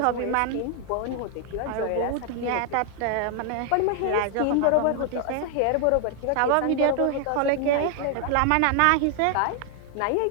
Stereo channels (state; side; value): different; both; correlation 0.00